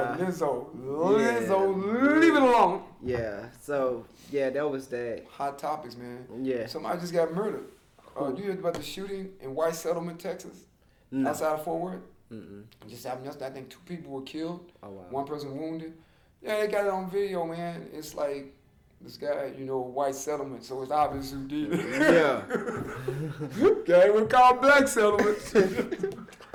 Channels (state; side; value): identical; both; correlation 1.00